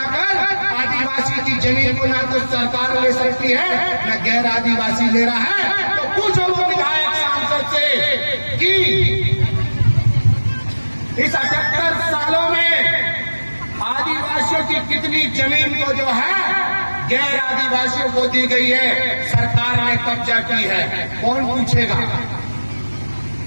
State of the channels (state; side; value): inverted; both; correlation -1.00